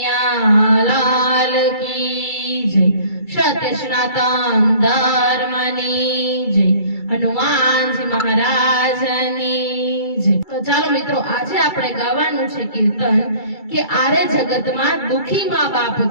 લાલ કી જય, સત્ય સનાતન ધર્મની જય, હનુમાનજી મહારાજની જય. તો ચાલો મિત્રો, આજે આપણે ગાવાનું છે કીર્તન કે આરે જગતમાં દુખી મા બાપ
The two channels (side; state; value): right; late; 2.3 ms